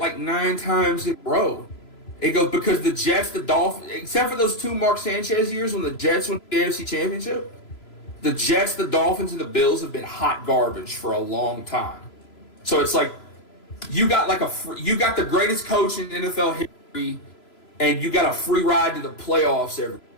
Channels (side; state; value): right; late; 3.0 ms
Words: 9 times in a row. He goes, because the Jets, the Dolphins, except for those 2 Mark Sanchez years when the Jets won the AFC Championship, the Jets, the Dolphins, and the Bills have been hot garbage for a long time. So it's like you got the greatest coach in NFL history, and you got a free ride to the playoffs every.